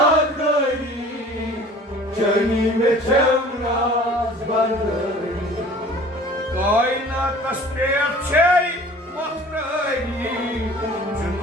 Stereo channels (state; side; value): normal; both; correlation 0.47